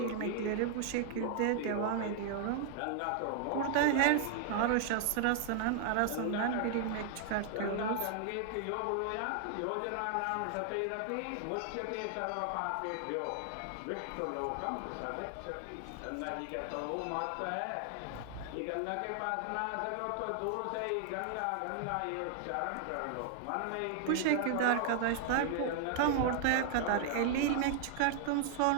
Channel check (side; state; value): both; different; correlation 0.00